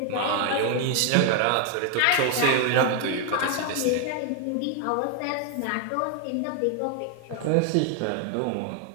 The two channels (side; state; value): both; different; correlation 0.00